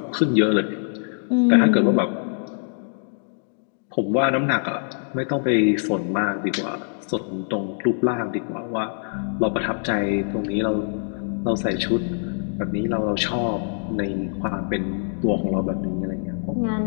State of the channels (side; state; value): right; silent; 60 dB below the other